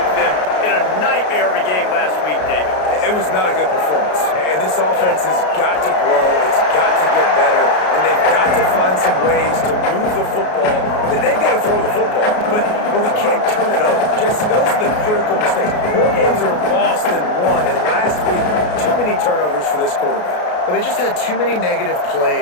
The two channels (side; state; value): right; late; 33 ms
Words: them in a nightmare of a game last week, David. It was not a good performance. And this offense has got to grow. It's got to get better. And they've got to find some ways to move the football. They've got to throw the football, but we can't turn it over. Jesse, those are the critical mistakes. More games are lost than won. And last week, too many turnovers for this quarterback. Well, they just had too many negative